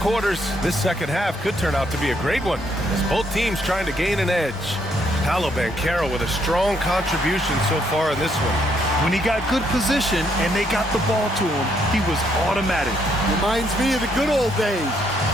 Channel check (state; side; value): normal; both; correlation 0.72